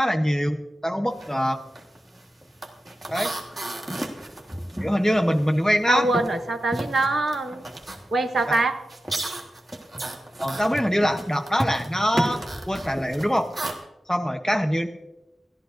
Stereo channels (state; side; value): normal; both; correlation 0.93